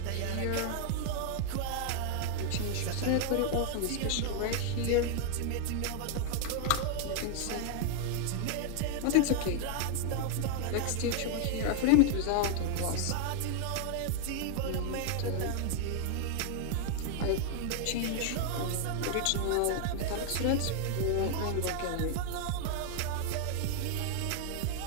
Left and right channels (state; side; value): different; both; correlation 0.00